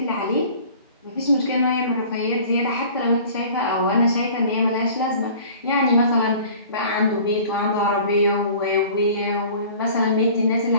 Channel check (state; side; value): inverted; both; correlation -0.46